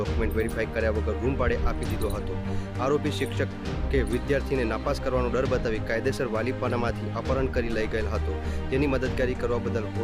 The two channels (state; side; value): identical; both; correlation 1.00